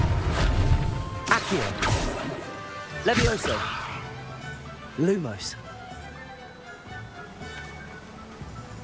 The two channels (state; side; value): identical; both; correlation 1.00